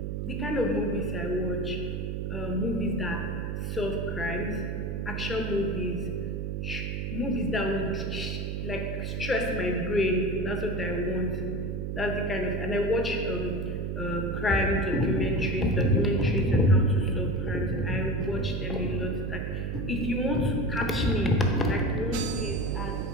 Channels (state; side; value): noise; right; hum, 3 dB below the sound